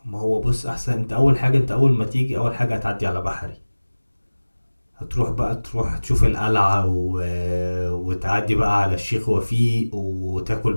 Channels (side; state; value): both; inverted; correlation -1.00